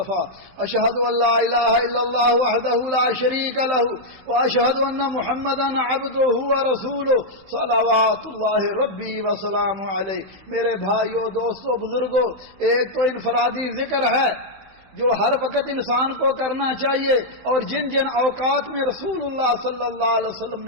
اشہد ان لا الہ الا اللہ وحدہ لا شریک لہ واشہد ان محمدا عبدہ ورسولہ صلوات اللہ ربی وسلام علیہ۔ میرے بھائیو، دوستو، بزرگو، ایک تو انفرادی ذکر ہے جو ہر وقت انسان کو کرنا چاہیے، اور جن جن اوقات میں رسول اللہ صلی اللہ علیہ وسلم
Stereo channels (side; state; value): left; late; 16 ms